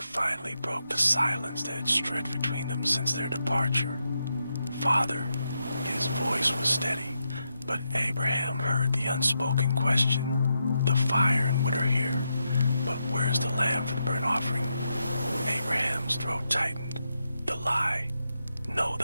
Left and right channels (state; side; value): inverted; both; correlation -0.84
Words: broke the silence that had stretched between them since their departure. "Father," his voice was steady, but Abraham heard the unspoken question. "The fire and wood are here, but where's the lamb for the burnt offering?" Abraham's throat tightened. The lie, no,